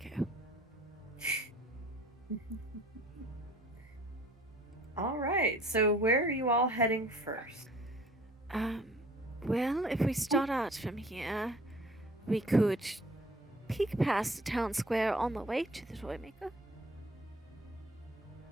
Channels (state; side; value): normal; both; correlation 0.52